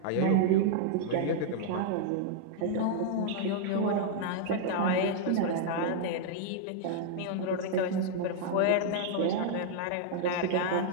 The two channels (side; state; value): both; different; correlation -0.01